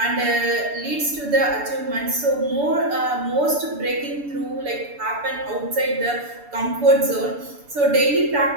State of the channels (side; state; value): left; late; 6.9 ms